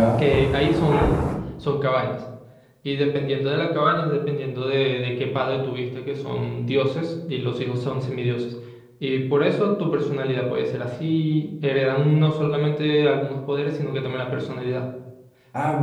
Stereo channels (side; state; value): both; identical; correlation 1.00